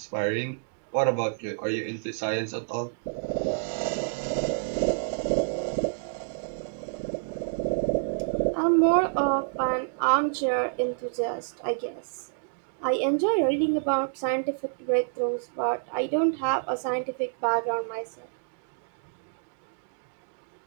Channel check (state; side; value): silent; left; digital silence